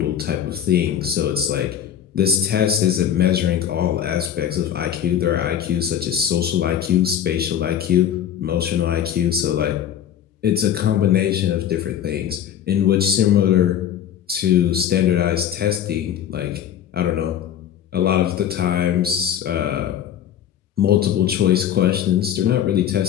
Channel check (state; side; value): quieter; right; 9.8 dB